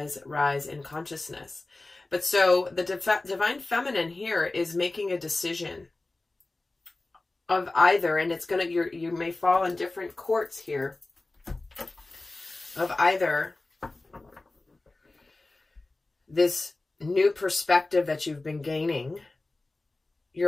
rise in consciousness. But so the divine feminine here is making a decision of either, and it's going to, you may fall in different courts here, of either this new perspective that you've been gaining,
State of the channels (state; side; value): quieter; right; 3.1 dB